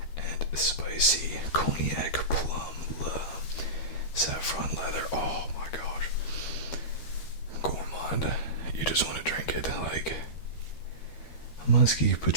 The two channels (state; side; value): late; right; 12 ms